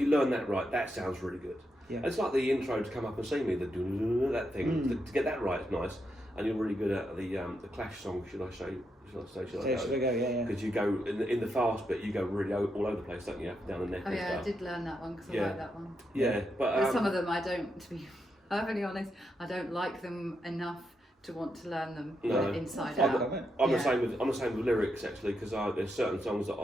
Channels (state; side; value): normal; both; correlation 0.83